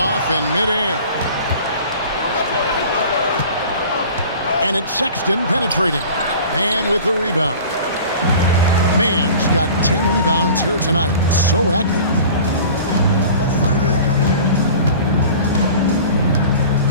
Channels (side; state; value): both; inverted; correlation -0.42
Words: in midair. And it's Sexton penetrating. Man with the rebound. Man's got 10 rebounds here tonight. So active.